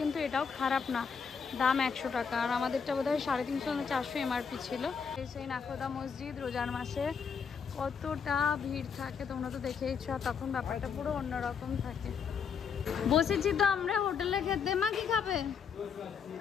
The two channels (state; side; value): quieter; right; 6.4 dB